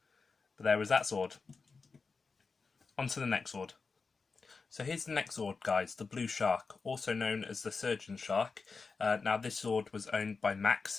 But there was that Zord. On to the next Zord. So here's the next Zord, guys, the Blue Shark, also known as the Surgeon Shark. Now this Zord was owned by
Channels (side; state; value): right; quieter; 4.6 dB